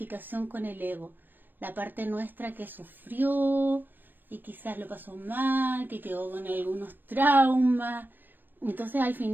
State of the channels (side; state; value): left; late; 0.093 ms